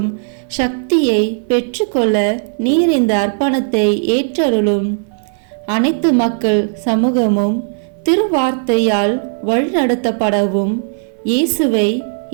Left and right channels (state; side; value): silent; left; 58 dB below the other